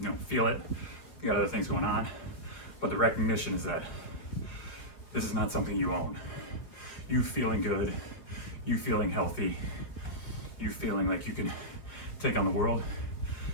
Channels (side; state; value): right; late; 5.2 ms